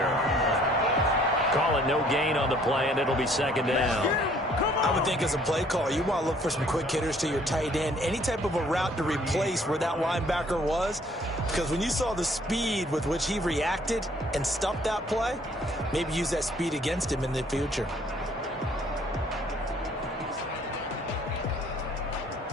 Call it no gain on the play, and it'll be 2nd down. I would think as a play caller, you want to look for some quick hitters to your tight end. Any type of a route to replace where that linebacker was. Because when you saw the speed with which he reacted and stuffed that play, maybe use that speed against him in the future.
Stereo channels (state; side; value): normal; both; correlation 0.60